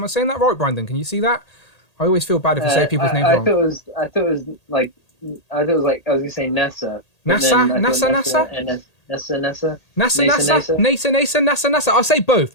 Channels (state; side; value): late; right; 1.8 ms